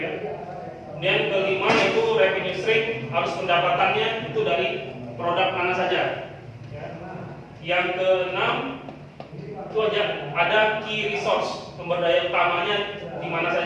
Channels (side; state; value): both; identical; correlation 1.00